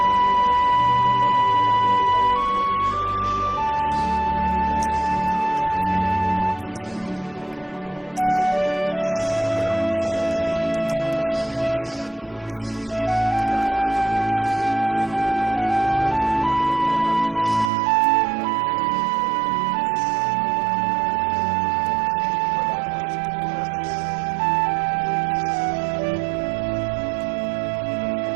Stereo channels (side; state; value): left; drops out; at 17.7 s